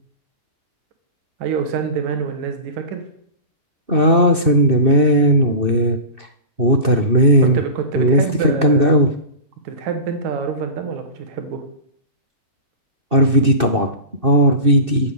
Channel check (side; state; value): left; late; 2.6 ms